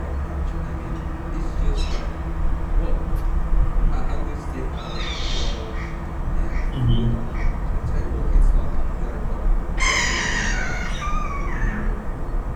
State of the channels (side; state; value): both; identical; correlation 1.00